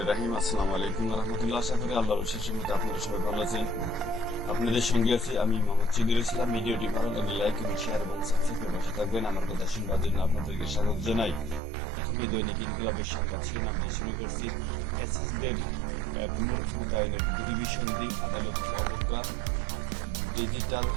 রহিম। আসসালামু আলাইকুম ওয়া রাহমাতুল্লাহ। আশা করি আল্লাহর অশেষ রহমতে আপনারা সবাই ভালো আছেন। আপনাদের সঙ্গে আছি আমি মোহাম্মদ সিদ্দিকুল ইসলাম। ভিডিওটি ভালো লাগলে লাইক এবং শেয়ার এবং সাবস্ক্রাইব করে পাশে থাকবেন। আমার কথা শুনবার জন্য আপনাদেরকে স্বাগত জানাই। প্রথমে দৈনিক ইনকিলাবের সংবাদ শিরোনাম দিয়ে শুরু করছি। ফ্যাসিস্টদের পুনর্ক্ষমতায়নের দুর্বিসন্ধি, আদালতকে অবজ্ঞা, ডিজিটাল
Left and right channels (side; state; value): left; drops out; at 11.6 s